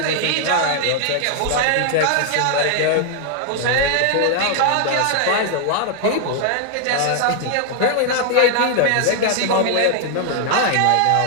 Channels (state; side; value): different; both; correlation 0.00